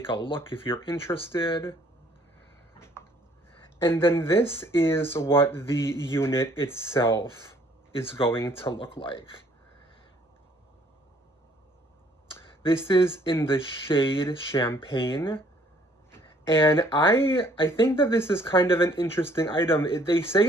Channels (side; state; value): both; normal; correlation 0.61